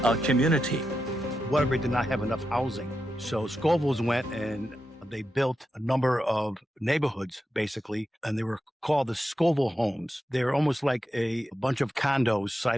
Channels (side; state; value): both; normal; correlation 0.88